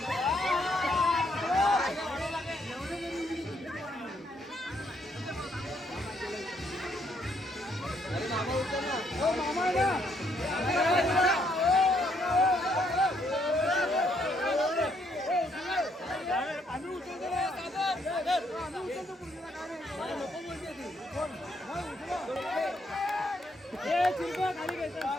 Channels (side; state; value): both; normal; correlation 0.72